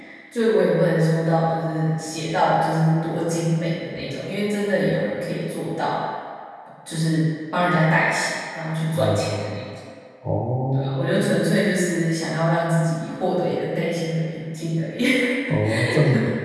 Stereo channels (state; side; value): identical; both; correlation 1.00